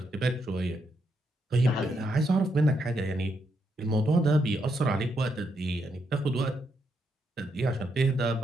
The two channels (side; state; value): both; normal; correlation 0.79